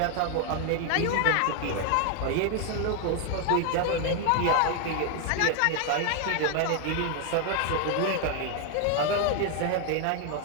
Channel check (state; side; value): different; both; correlation 0.01